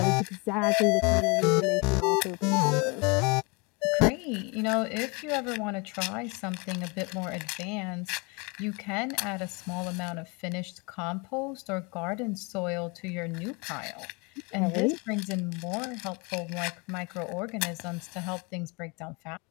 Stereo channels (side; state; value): right; quieter; 29.7 dB